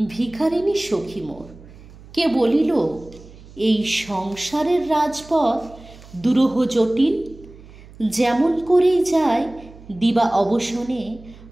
ভিখারিনী সখী মোর। কে বলিল এই সংসারের রাজপথ দুরূহ জটিল? যেমন করেই যায় দিবা অবসানে,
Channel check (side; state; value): right; noise; hum, 21 dB below the sound